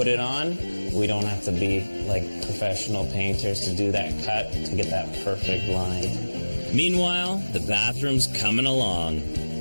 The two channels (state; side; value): inverted; both; correlation -1.00